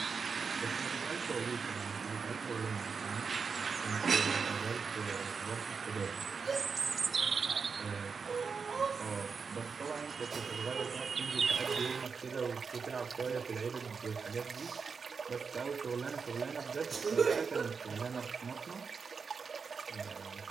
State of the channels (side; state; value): left; quieter; 5.4 dB